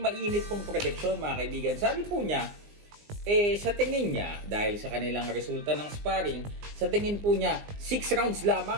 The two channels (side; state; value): left; late; 20 ms